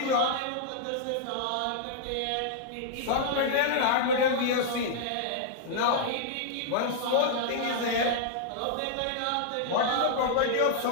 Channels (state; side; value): different; both; correlation -0.01